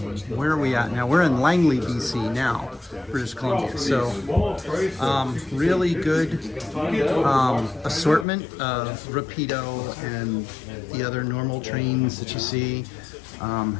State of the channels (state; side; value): drops out; right; at 8.2 s